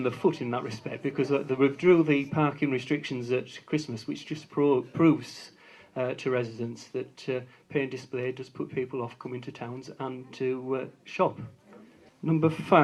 the foot in that respect, because they withdrew the parking restrictions at Christmas, which just proves to residents that pay and display does put people off coming to towns and to shop. Number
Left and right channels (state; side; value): identical; both; correlation 1.00